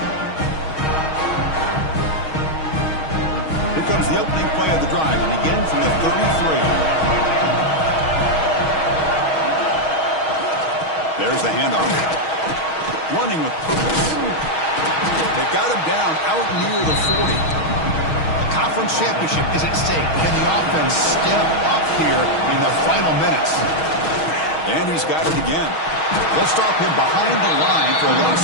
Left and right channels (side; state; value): right; late; 6.3 ms